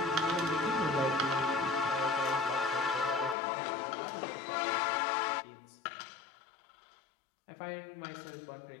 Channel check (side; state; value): right; drops out; at 3.4 s